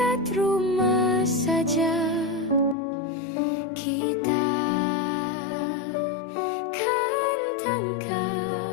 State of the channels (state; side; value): drops out; right; at 2.8 s